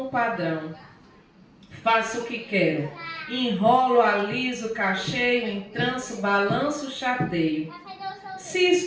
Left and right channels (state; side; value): identical; both; correlation 1.00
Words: padrão. Faço o que quero. Enrolo, aliso, cacheio, entranço, balanço, chateio. Se